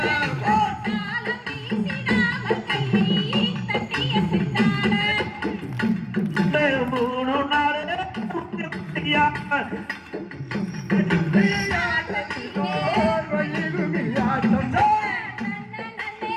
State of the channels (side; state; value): both; identical; correlation 1.00